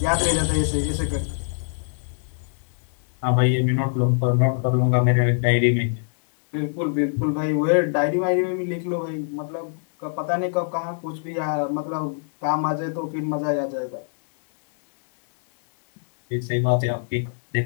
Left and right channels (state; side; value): silent; right; 63 dB below the other